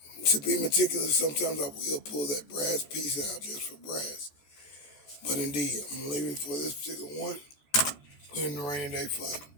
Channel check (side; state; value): right; late; 14 ms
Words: To be meticulous, sometimes I will pull that brass piece out just for brass. But indeed, I'm going to leave it for this particular one. Put it in the rainy day fun.